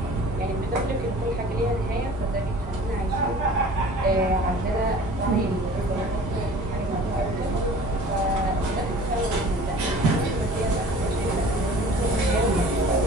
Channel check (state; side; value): normal; both; correlation 0.45